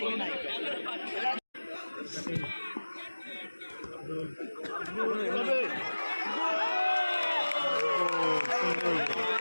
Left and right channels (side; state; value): both; inverted; correlation -1.00